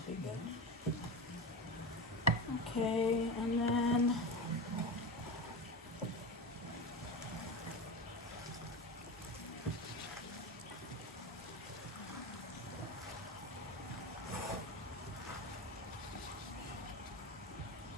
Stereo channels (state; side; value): normal; both; correlation 0.23